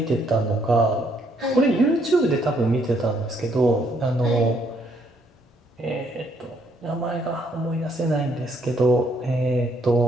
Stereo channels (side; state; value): both; normal; correlation 0.70